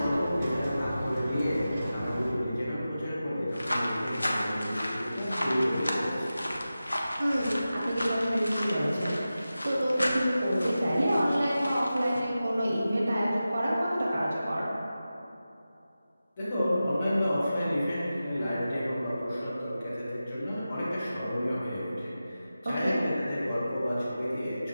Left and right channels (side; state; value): both; inverted; correlation -0.94